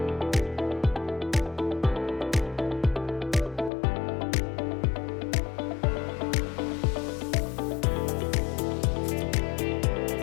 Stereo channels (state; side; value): drops out; right; at 3.7 s